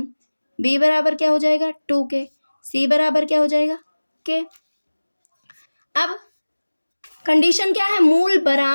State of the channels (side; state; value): both; inverted; correlation -1.00